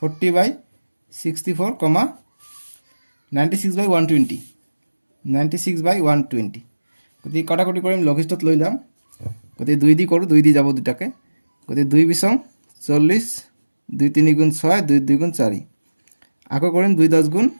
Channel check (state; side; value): inverted; both; correlation -1.00